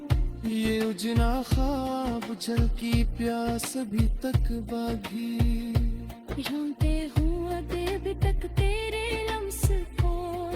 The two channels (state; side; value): identical; both; correlation 1.00